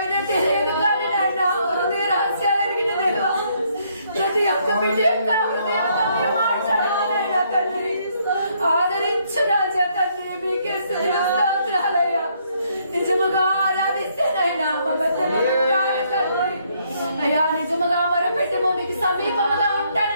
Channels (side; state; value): both; inverted; correlation -0.70